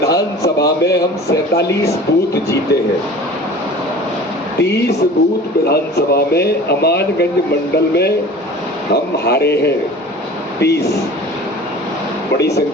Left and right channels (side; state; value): both; normal; correlation 0.41